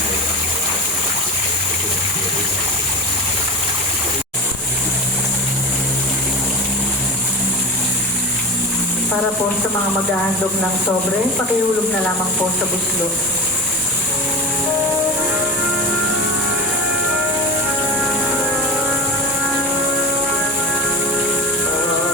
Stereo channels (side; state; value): both; normal; correlation 0.26